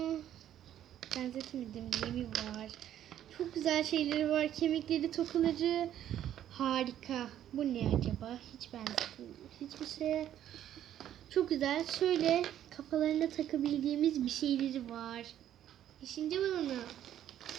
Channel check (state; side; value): quieter; left; 11.2 dB